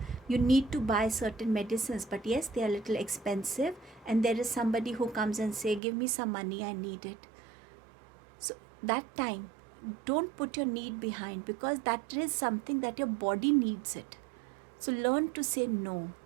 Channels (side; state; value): left; drops out; at 5.8 s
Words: you need to buy certain medicines, but yes, they are a little expensive, and there is somebody who comes and say, give me some money, I need it. So that time, don't put your need behind, because that is something that your body needs it. So learn to say no.